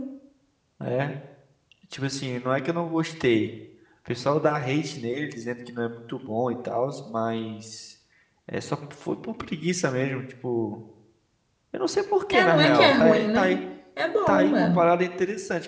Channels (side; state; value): both; identical; correlation 1.00